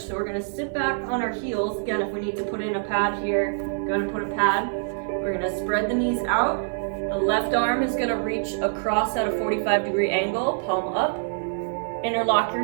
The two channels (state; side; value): silent; left; digital silence